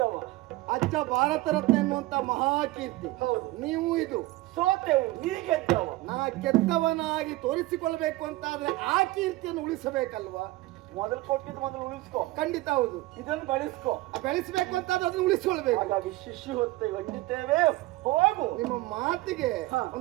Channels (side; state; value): left; quieter; 18.9 dB